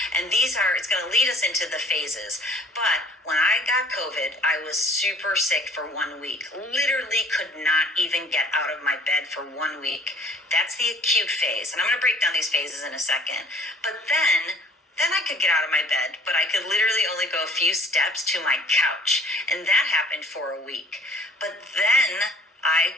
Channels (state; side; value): normal; both; correlation 0.52